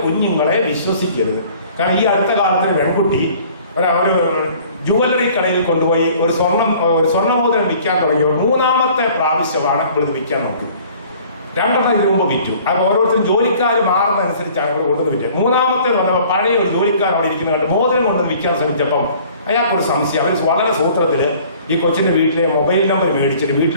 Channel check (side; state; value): both; inverted; correlation -0.52